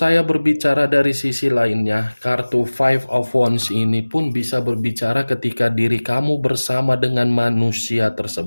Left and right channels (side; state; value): both; inverted; correlation -1.00